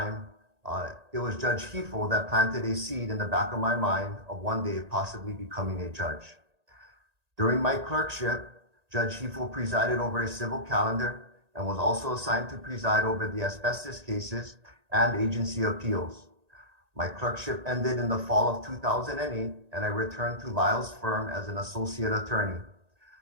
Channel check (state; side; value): late; left; 1.8 ms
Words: it was Judge Hefel that planted a seed in the back of my mind of one day possibly becoming a judge. During my clerkship, Judge Hefel presided over a civil calendar and was also assigned to preside over the asbestos cases and agency appeals. My clerkship ended in the fall of 2008, and I returned to Lyle's firm as an associate attorney.